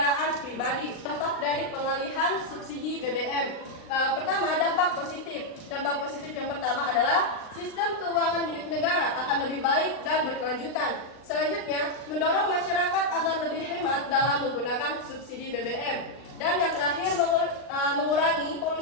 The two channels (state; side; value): late; right; 39 ms